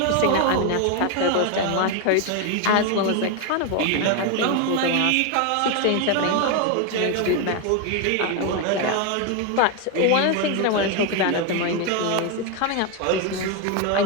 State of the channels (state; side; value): different; both; correlation 0.01